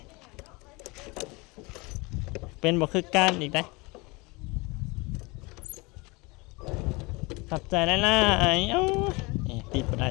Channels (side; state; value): right; quieter; 25.8 dB